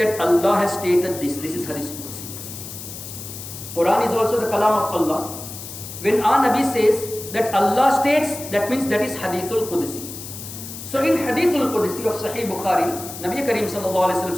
Allah has stated this. This is Hadithul Qudsi. Quran is also the kalam of Allah. When our Nabi says that Allah states, that means that is Hadithul Qudsi. So in Hadithul Qudsi of Sahih Bukhari, Nabi Kareem sallallahu alayhi wasallam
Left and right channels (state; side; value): noise; left; hiss, 11 dB below the sound